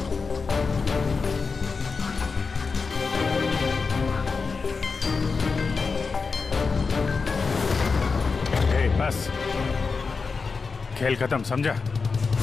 बस, खेल खत्म, समझा?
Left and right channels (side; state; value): right; quieter; 4.6 dB